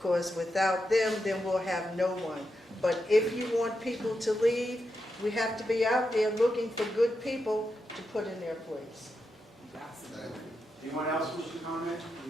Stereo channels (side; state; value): both; normal; correlation 0.86